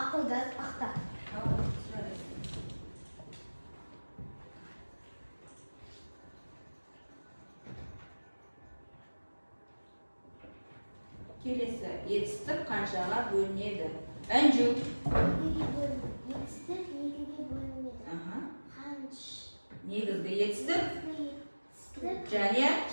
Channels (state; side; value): inverted; both; correlation -1.00